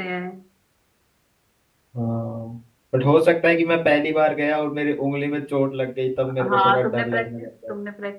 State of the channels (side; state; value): both; identical; correlation 1.00